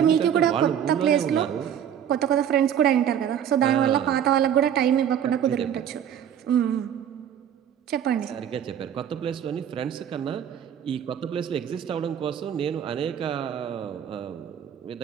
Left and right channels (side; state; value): left; quieter; 9.3 dB